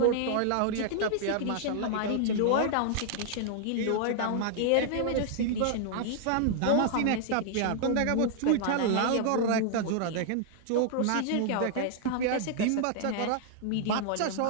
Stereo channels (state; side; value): different; both; correlation -0.01